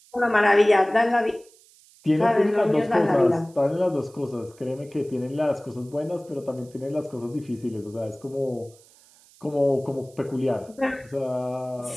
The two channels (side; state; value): right; noise; hiss, 27 dB below the sound